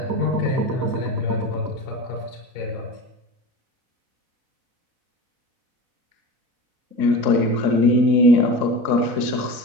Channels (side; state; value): left; late; 4.0 ms